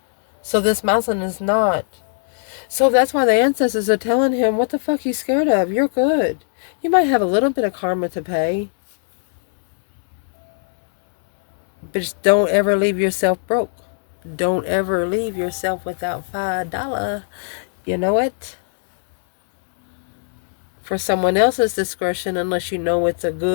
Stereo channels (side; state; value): right; silent; digital silence